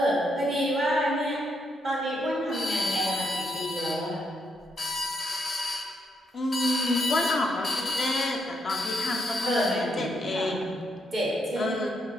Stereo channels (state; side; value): normal; both; correlation 0.78